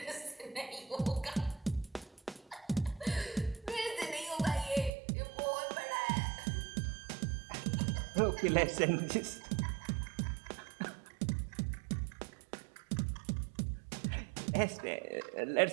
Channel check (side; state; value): left; drops out; at 4.9 s